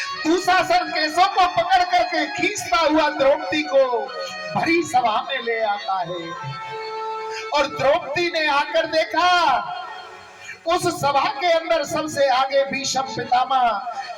दुशासन केसों को पकड़ करके खींचता हुआ द्रौपदी को भरी सभा में ले आता है, और द्रौपदी ने आकर देखा, उस सभा के अंदर सबसे आगे भीष्म पितामह,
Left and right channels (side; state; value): both; identical; correlation 1.00